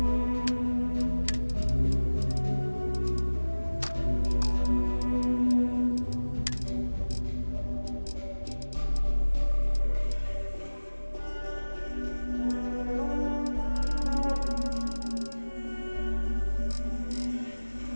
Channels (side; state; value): both; inverted; correlation -1.00